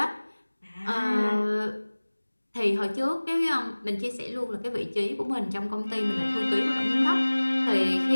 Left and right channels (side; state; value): both; inverted; correlation -1.00